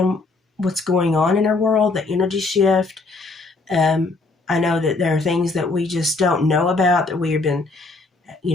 what's going on in our world, the energy shift. I know that there are things that we just don't know about, that we have been,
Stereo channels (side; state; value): right; quieter; 3.5 dB